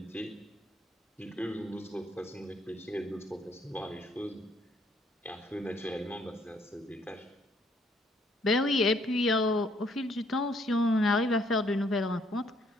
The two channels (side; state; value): both; normal; correlation 0.67